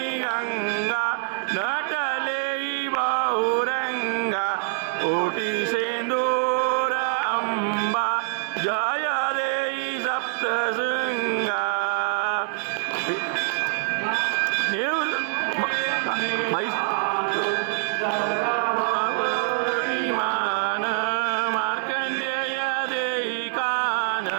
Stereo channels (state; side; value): silent; left; 62 dB below the other